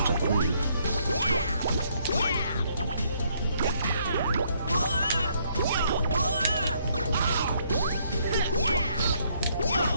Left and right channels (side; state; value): both; inverted; correlation -0.70